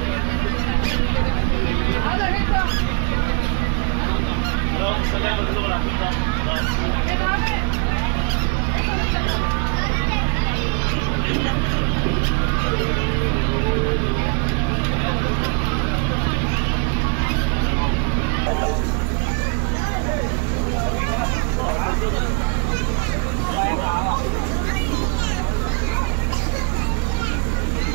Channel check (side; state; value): left; quieter; 34.4 dB